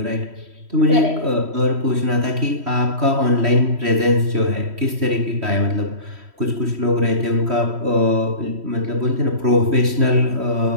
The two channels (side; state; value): left; late; 3.1 ms